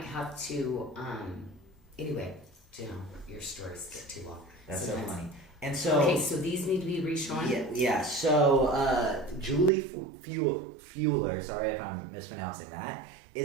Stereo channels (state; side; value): drops out; left; at 9.7 s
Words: have to, anyway, you know, your stories get too long. that's sometimes. so funny. And so Okay, so these need to be reshown? Yeah. So Julie Fueler, sorry if I'm mispronouncing that,